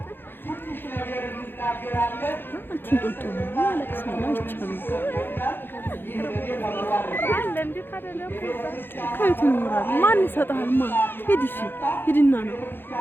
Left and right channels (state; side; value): late; right; 0.10 ms